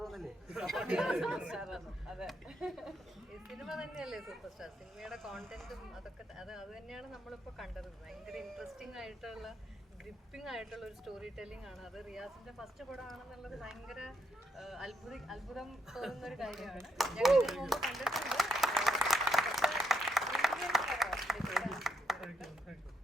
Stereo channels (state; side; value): normal; both; correlation 0.76